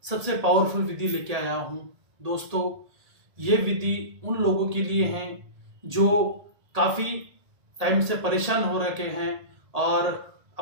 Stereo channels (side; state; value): left; late; 1.8 ms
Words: सबसे पावरफुल विधि लेके आया हूँ। दोस्तों, ये विधि उन लोगों के लिए है जो काफ़ी टाइम से परेशान हो रखे हैं और